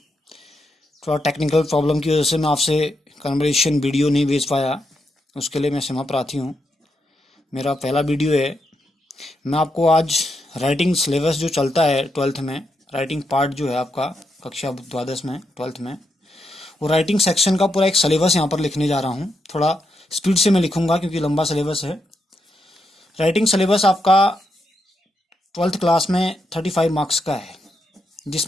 थोड़ा टेक्निकल प्रॉब्लम की वजह से मैं आपसे कन्वर्सेशन वीडियो नहीं भेज पाया, उसके लिए मैं क्षमा प्रार्थी हूँ। मेरा पहला वीडियो है। मैं आपको आज राइटिंग सिलेबस जो चलता है ट्वेल्थ में, राइटिंग पार्ट जो है आपका कक्षा द्वादश में ट्वेल्थ में, वो राइटिंग सेक्शन का पूरा एक सिलेबस यहाँ पर लिखने जा रहा हूँ। थोड़ा स्पीड से मैं लिखूंगा क्योंकि लंबा सिलेबस है। राइटिंग सिलेबस आपका ट्वेल्थ क्लास में 35 मार्क्स का है,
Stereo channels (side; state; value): both; normal; correlation 0.83